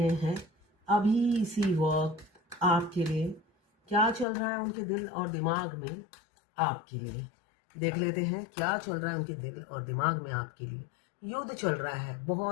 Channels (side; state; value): right; drops out; at 4.2 s